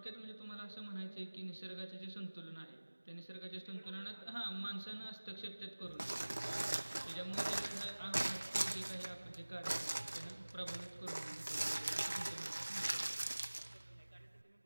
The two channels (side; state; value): both; inverted; correlation -1.00